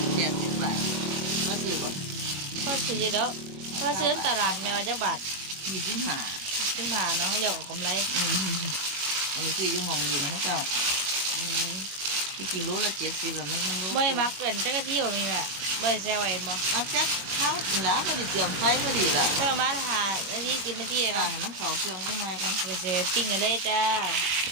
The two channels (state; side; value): late; left; 21 ms